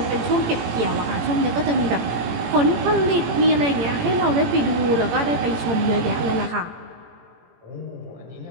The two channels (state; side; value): late; left; 18 ms